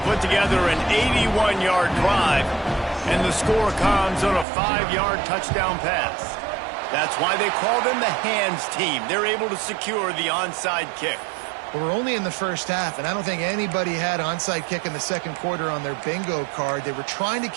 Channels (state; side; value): drops out; left; at 4.5 s